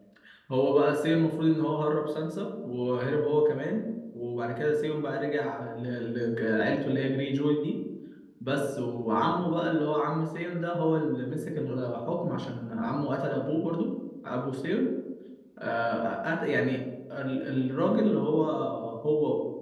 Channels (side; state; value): both; identical; correlation 1.00